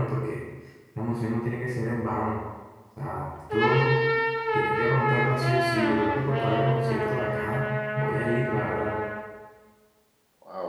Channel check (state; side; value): identical; both; correlation 1.00